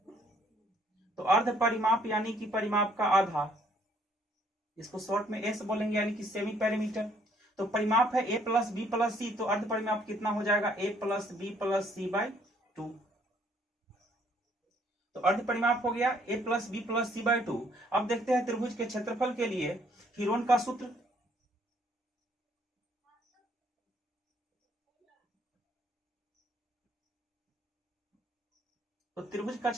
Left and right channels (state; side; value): normal; both; correlation 0.64